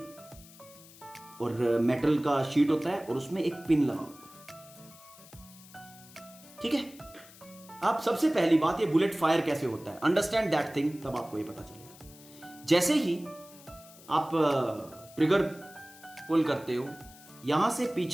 और मेटल का शीट होता है और उसमें एक पिन लगा होता है, ठीक है। अब सबसे पहली बात, ये बुलेट फायर कैसे होता है, अंडरस्टैंड दैट थिंग, तब आपको ये पता चलेगा। जैसे ही आप ट्रिगर पुल करते हो, यहां से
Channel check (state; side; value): noise; left; hiss, 21 dB below the sound